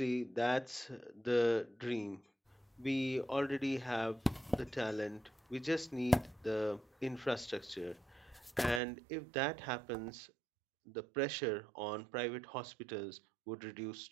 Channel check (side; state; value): left; drops out; at 8.8 s